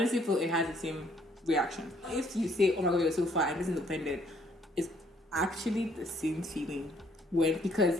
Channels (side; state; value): both; normal; correlation 0.65